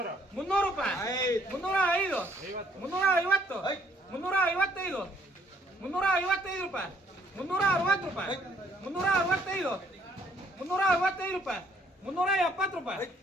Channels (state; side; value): normal; both; correlation 0.64